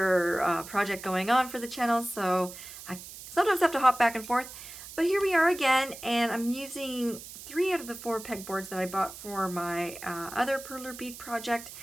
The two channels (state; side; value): noise; right; hiss, 14 dB below the sound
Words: project going on for the channel, so I sometimes have to hop back and forth. But here we are again, and I'm using 3 out of the 4 pegboards that I bought for my other Perler Bead project